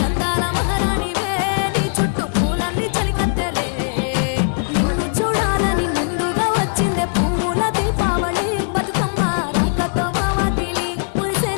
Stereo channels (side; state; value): right; silent; digital silence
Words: అందాల మహారాణివే నీ చుట్టూ పూలన్నీ చలికత్తెలే నిన్ను చూడాలని ముందుగా వచ్చిందే పూల దీపావళి బతుకమ్మ రాకతో మావాకిలి